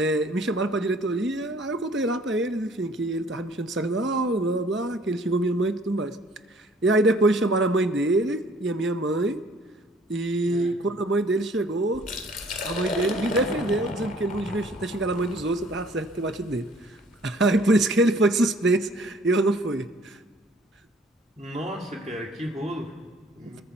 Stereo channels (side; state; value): both; normal; correlation 0.56